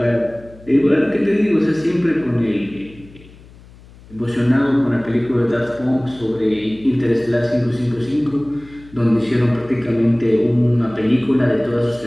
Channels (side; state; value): left; noise; hum, 23 dB below the sound